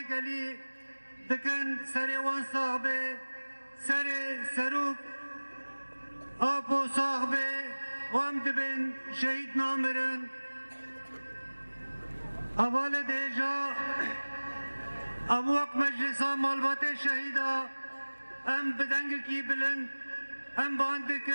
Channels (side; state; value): both; inverted; correlation -1.00